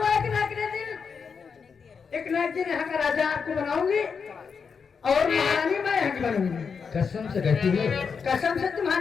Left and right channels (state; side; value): quieter; right; 5.9 dB